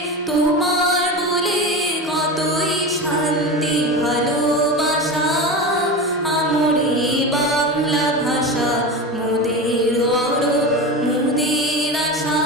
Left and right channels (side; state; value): both; normal; correlation 0.25